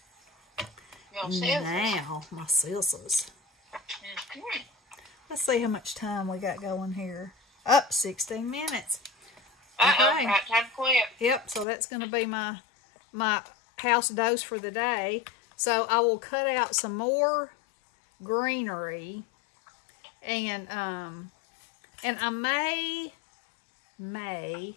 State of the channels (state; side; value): drops out; right; at 11.7 s